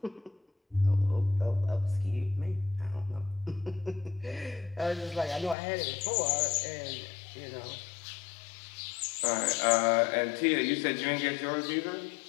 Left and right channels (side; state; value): right; drops out; at 5.6 s